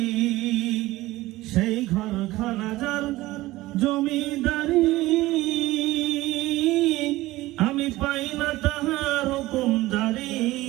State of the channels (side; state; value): left; quieter; 18.0 dB